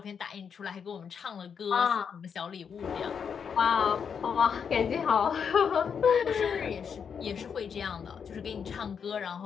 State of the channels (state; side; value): quieter; right; 6.9 dB